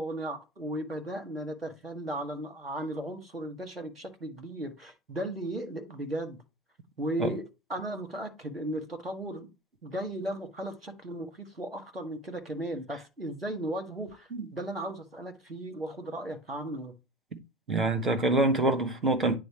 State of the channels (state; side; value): normal; both; correlation 0.36